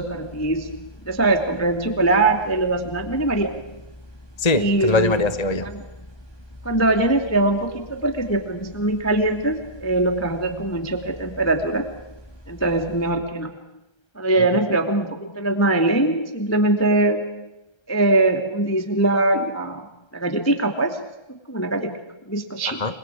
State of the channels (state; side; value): late; right; 1.3 ms